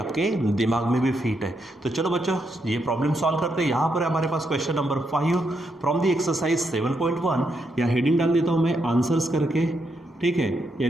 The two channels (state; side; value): normal; both; correlation 0.80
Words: दिमाग में भी फिट है। तो चलो बच्चों ये प्रॉब्लम सॉल्व करते हैं। यहाँ पर हमारे पास question number 5 from the exercise 7.1। या हेडिंग डाल देता हूँ मैं आंसर्स करके, ठीक है,